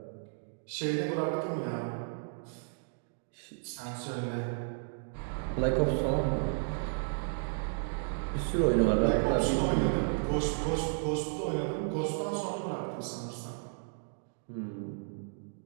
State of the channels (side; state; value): left; silent; digital silence